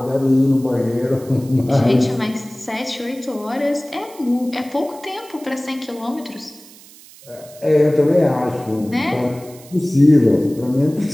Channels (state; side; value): noise; right; hiss, 22 dB below the sound